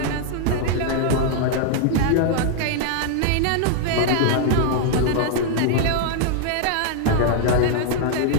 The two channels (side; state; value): both; different; correlation 0.00